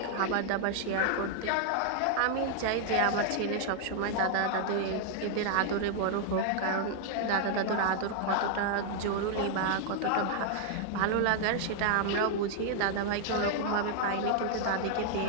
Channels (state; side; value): different; both; correlation 0.00